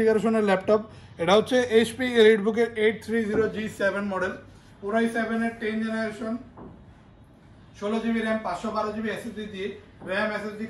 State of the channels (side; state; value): both; identical; correlation 1.00